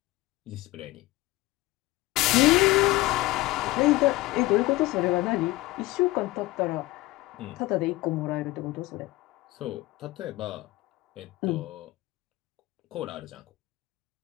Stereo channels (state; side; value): quieter; right; 19.1 dB